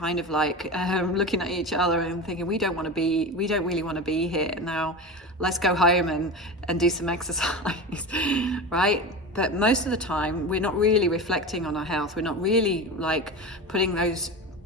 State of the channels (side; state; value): both; normal; correlation 0.26